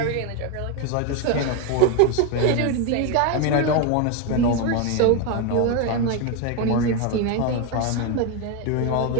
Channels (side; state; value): both; different; correlation 0.02